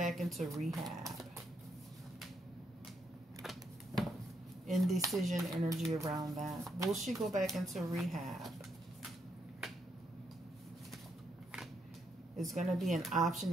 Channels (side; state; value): both; normal; correlation 0.77